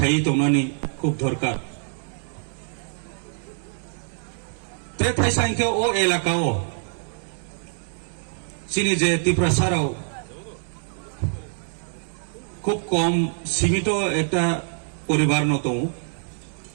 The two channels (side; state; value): left; silent; digital silence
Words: তংনানি খুব দরকার তে থাই সাইকে ও এলাকাও চিনি যে ত্রিপুরাসারাও খুব কম সীমিত একটা পরিবার ন দं